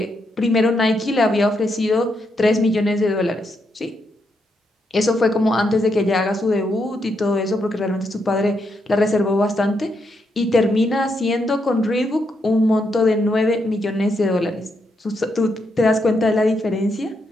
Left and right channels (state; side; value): normal; both; correlation 0.80